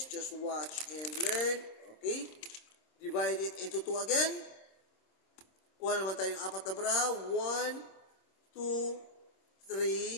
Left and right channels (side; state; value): right; late; 26 ms